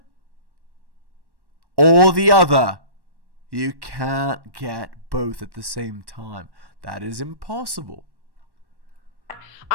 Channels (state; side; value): late; left; 1.1 ms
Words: or the other. You can't get both at the same time. That is impossible.